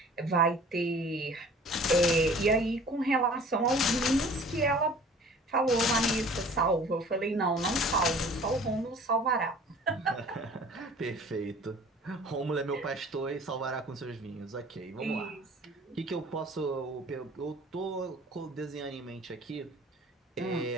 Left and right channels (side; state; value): both; normal; correlation 0.48